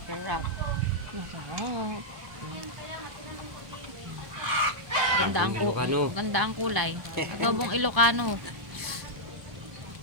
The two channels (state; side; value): late; left; 1.0 ms